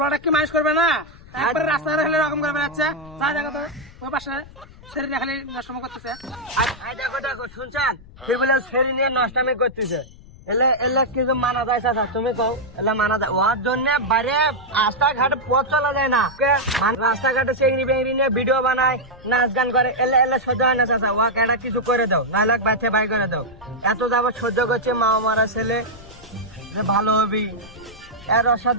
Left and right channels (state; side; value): noise; left; rumble, 21 dB below the sound